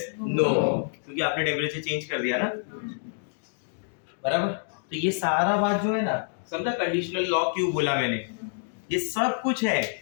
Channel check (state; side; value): silent; right; digital silence